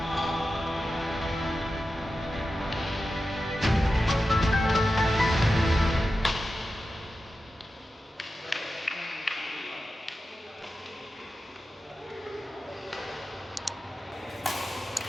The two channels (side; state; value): both; normal; correlation 0.92